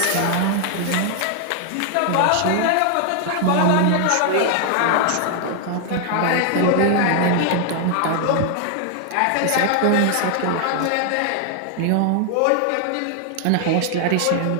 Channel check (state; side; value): different; both; correlation 0.00